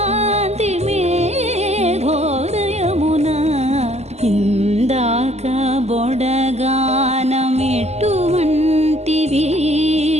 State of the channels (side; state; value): left; late; 0.32 ms